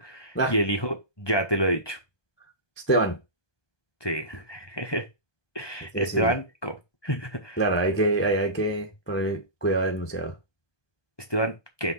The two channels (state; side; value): late; right; 1.2 ms